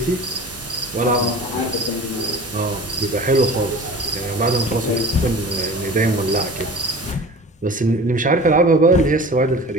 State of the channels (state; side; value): normal; both; correlation 0.38